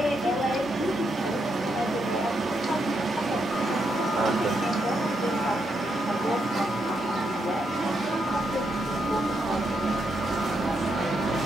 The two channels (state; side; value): normal; both; correlation 0.80